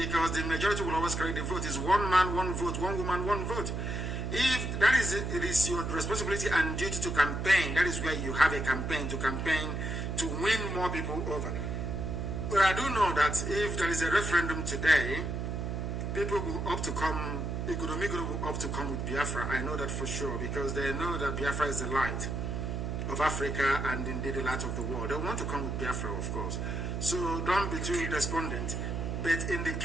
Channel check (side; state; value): right; noise; hum, 2 dB below the sound